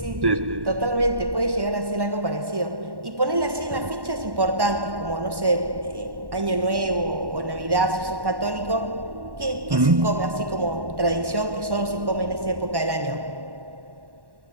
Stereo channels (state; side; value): late; left; 1.1 ms